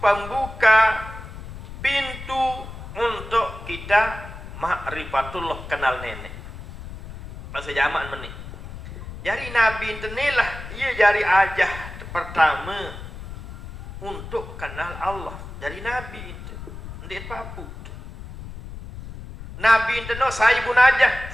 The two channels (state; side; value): noise; left; rumble, 12 dB below the sound